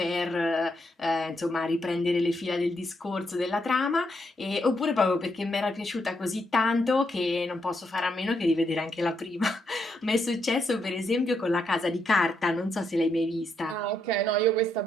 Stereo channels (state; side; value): normal; both; correlation 0.79